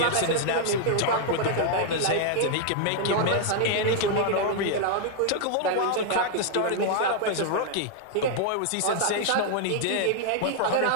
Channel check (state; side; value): different; both; correlation 0.00